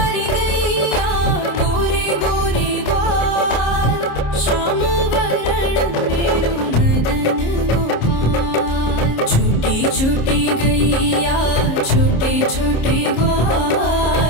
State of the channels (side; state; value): right; late; 26 ms